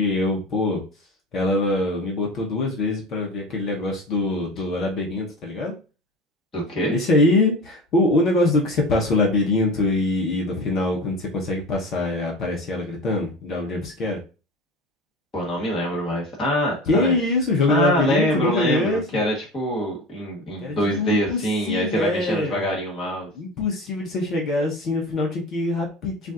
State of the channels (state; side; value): normal; both; correlation 0.32